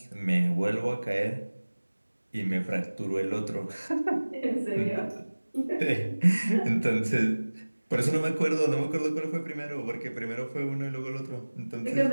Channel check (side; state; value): both; inverted; correlation -1.00